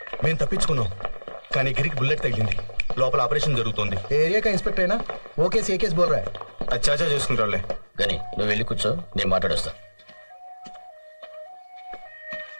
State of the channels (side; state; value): both; inverted; correlation -1.00